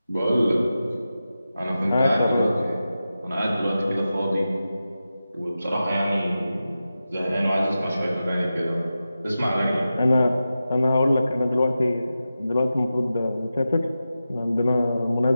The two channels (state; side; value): inverted; both; correlation -0.92